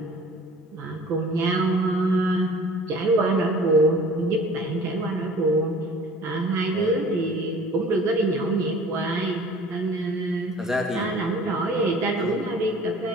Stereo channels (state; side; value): normal; both; correlation 0.47